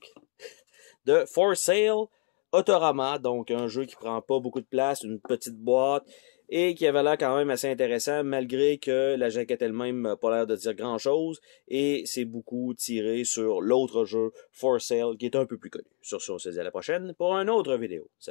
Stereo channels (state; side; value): quieter; right; 35.1 dB